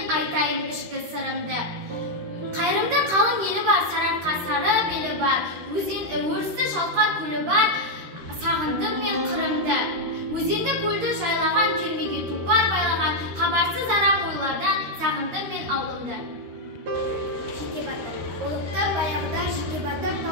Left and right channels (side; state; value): left; late; 13 ms